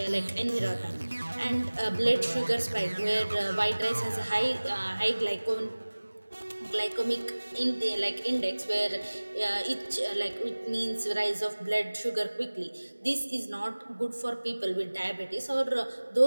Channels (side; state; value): both; inverted; correlation -1.00